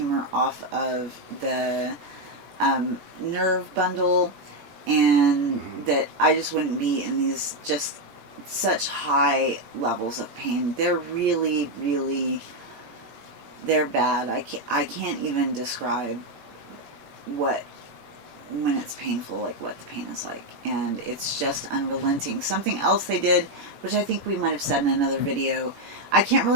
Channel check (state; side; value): late; left; 18 ms